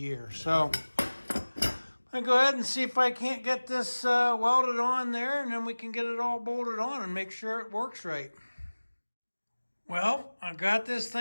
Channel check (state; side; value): inverted; both; correlation -1.00